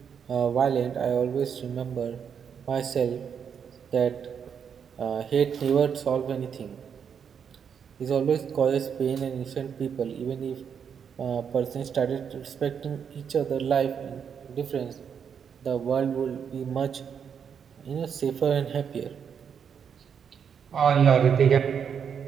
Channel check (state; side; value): quieter; left; 7.4 dB